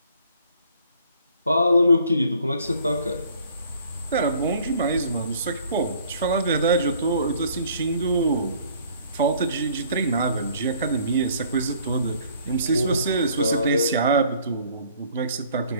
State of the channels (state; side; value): inverted; both; correlation -0.57